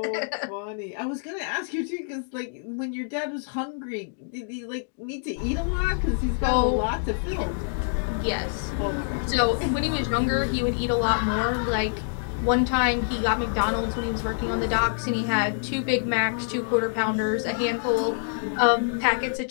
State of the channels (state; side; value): silent; right; digital silence